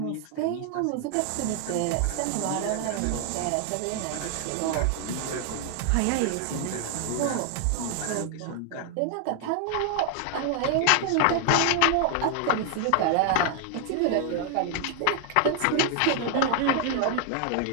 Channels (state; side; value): different; both; correlation 0.00